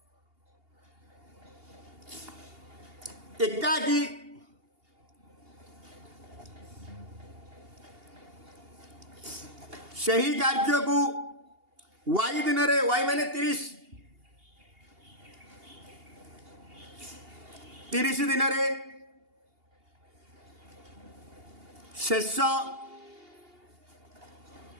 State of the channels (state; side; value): late; left; 2.8 ms